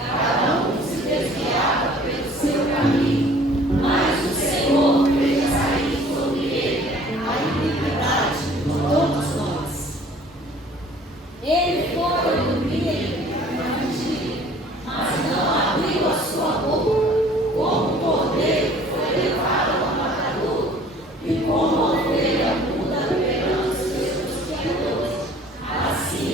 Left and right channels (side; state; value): both; normal; correlation 0.52